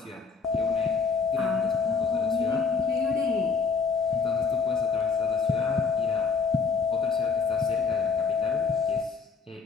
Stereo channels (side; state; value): right; quieter; 5.2 dB